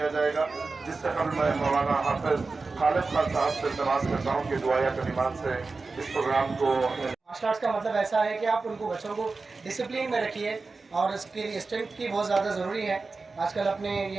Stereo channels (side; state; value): left; quieter; 4.0 dB